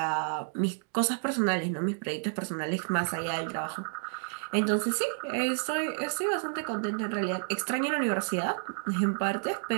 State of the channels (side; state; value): left; silent; digital silence